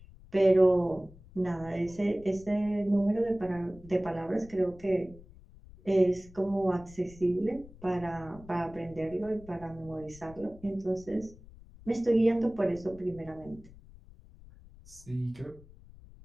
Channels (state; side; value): noise; left; rumble, 21 dB below the sound